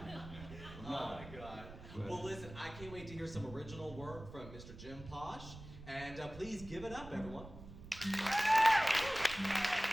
Oh my God. Well, listen, I can't wait to hear some original work from Mr. Jim Posh. And please give it up, everyone.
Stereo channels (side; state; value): right; noise; rumble, 15 dB below the sound